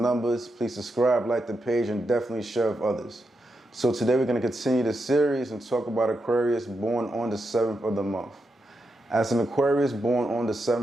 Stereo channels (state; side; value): normal; both; correlation 0.85